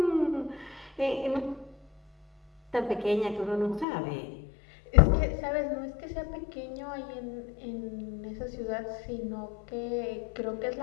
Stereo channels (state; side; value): drops out; right; at 3.9 s